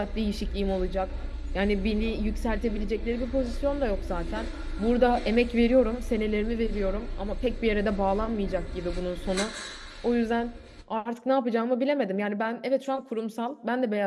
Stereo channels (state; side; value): identical; both; correlation 1.00